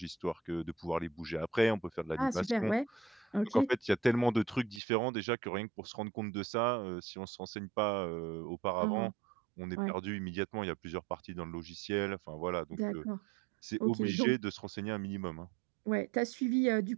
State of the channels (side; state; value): left; drops out; at 4.8 s